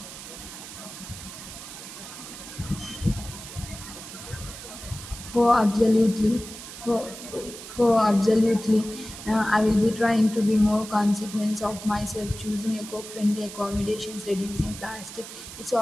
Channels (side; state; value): right; noise; hiss, 12 dB below the sound